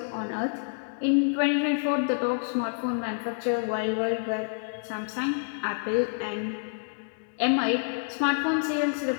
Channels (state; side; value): silent; right; digital silence